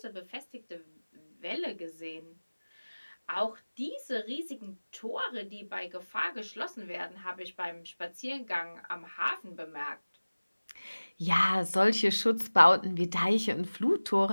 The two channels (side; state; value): both; inverted; correlation -1.00